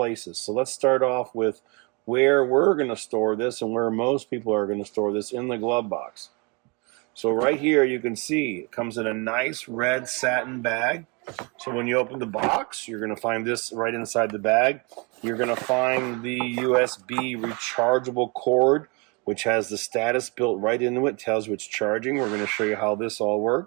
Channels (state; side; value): quieter; left; 30.6 dB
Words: So let's start off with where we're going to store this and where most people are going to store this, in the glove box. So right here you can see it comes in a nice red satin bag. So when you open the box, you're going to find this right inside the bag. You're going to find the USB rechargeable cord, which has the status built right into it, tells you it's charging. We're going to show you how this all